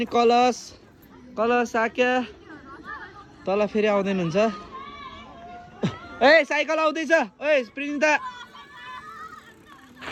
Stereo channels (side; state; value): both; identical; correlation 1.00